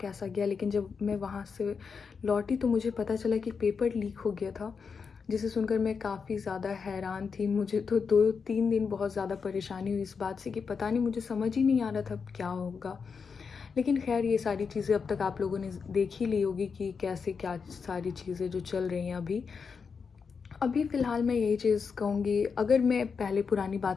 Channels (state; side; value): quieter; right; 5.6 dB